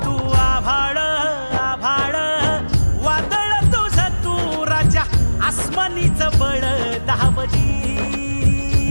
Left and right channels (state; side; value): inverted; both; correlation -1.00